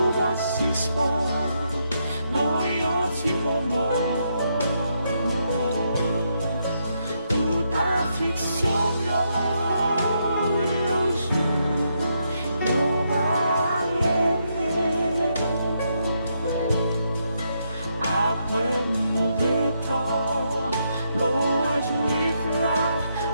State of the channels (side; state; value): both; inverted; correlation -0.79